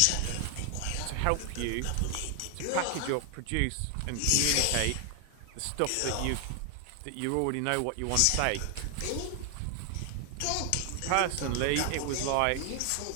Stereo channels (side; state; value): both; different; correlation 0.00